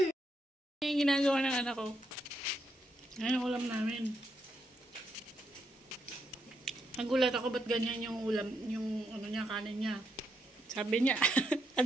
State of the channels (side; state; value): both; normal; correlation 0.79